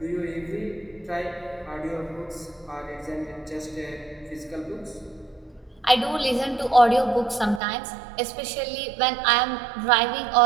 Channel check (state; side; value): drops out; left; at 7.6 s